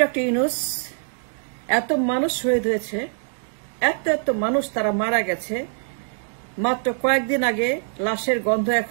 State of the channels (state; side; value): silent; left; 63 dB below the other